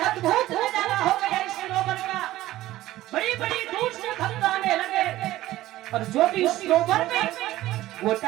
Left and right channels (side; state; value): left; quieter; 15.6 dB